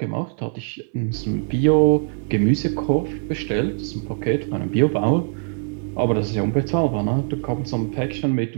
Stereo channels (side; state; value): left; silent; 60 dB below the other